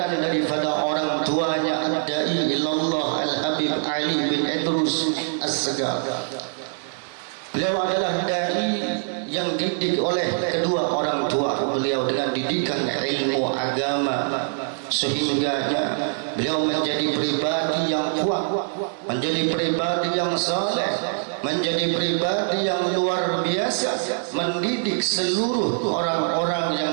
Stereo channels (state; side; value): silent; left; 56 dB below the other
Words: daripada orang tuanya, ad-dai ilallah Al-Habib Ali bin Idrus As-Segaf. Beliau adalah dai yang didik oleh kedua orang tua beliau dengan didikan ilmu agama, sehingga beliau menjadi pribadi yang kuat, menjadi pribadi yang saleh, menjadi pribadi yang luar biasa, mendidik seluruh orang-orang yang